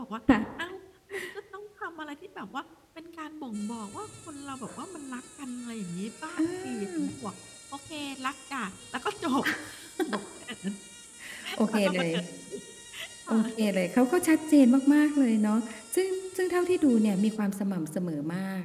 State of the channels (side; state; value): both; identical; correlation 1.00